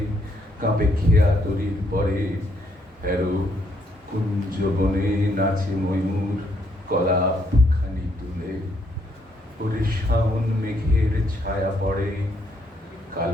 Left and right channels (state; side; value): normal; both; correlation 0.72